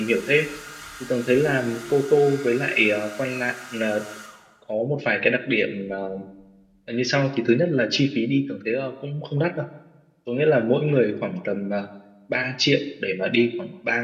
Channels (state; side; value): identical; both; correlation 1.00